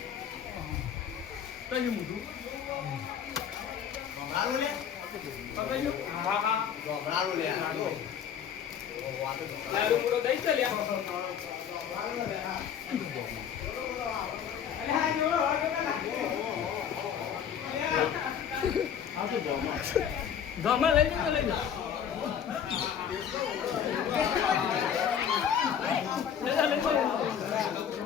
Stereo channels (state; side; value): quieter; right; 8.4 dB